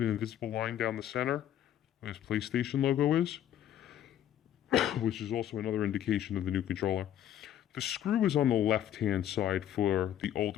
an invisible line down the center where this PlayStation logo is, which is also another indication of the new controller. The screw is on the left-hand side for the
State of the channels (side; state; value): right; quieter; 11.0 dB